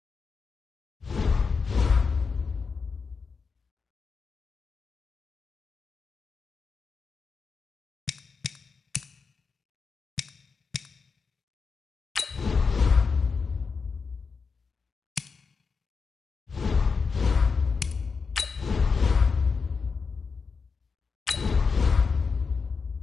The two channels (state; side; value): quieter; right; 5.1 dB